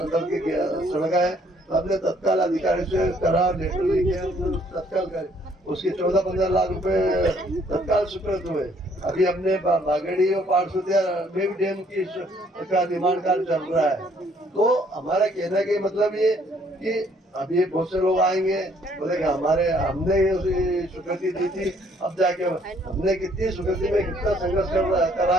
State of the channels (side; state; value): both; normal; correlation 0.64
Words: के सड़क है, तो हमने तत्काल अधिकारी से करा, लेटर लिखे, तत्काल करे, उसके 14-15 लाख रुपए तत्काल स्वीकृत हुए। अभी हमने बागेड़ी और पाठसुतिया में भी डैम की का निर्माण कार्य चल रहा है। तो हमारा कहने का मतलब ये कि अभी बहुत से लोग आएंगे, बोलेंगे हमने ये स्वीकृति दी थी, अब जाके हमने कितनी स्वीकृति में कितना संघर्ष करा